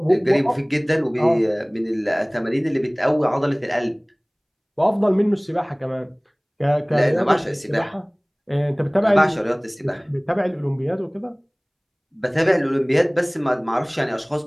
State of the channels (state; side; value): identical; both; correlation 1.00